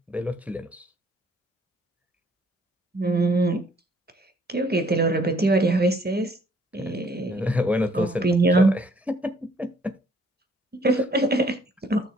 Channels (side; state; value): both; normal; correlation 0.63